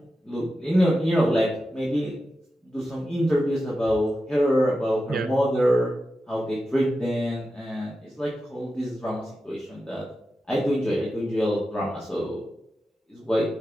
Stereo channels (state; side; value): normal; both; correlation 0.91